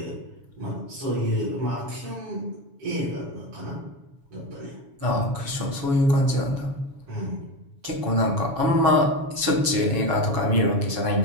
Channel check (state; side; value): late; left; 7.1 ms